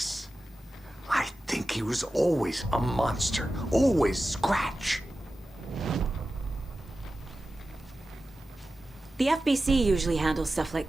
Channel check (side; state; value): both; normal; correlation 0.94